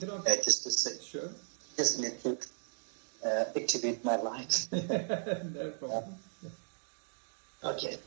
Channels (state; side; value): silent; left; digital silence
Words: I just to say, sure. Just need to activate my light. No problem. Okay,